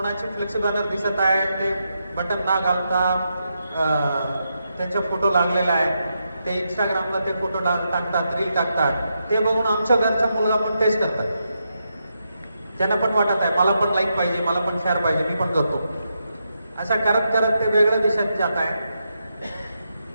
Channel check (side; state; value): both; inverted; correlation -0.84